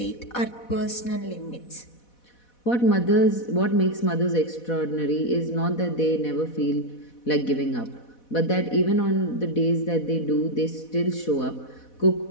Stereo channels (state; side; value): late; right; 4.1 ms